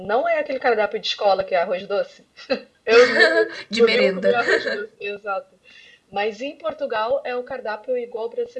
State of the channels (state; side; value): identical; both; correlation 1.00